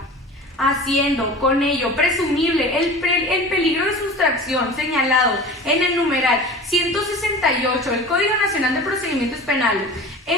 haciendo con ello presumible el peligro de sustracción señalado en el numeral 168 del Código Nacional de Procedimientos Penales,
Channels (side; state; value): both; normal; correlation 0.37